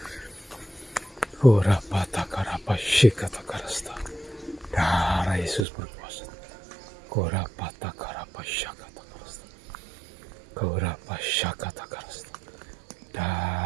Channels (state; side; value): drops out; left; at 5.7 s